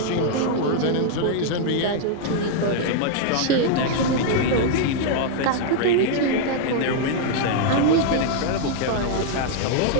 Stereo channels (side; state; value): both; different; correlation 0.00